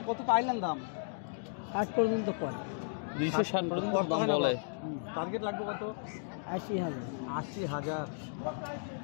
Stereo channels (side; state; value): right; silent; digital silence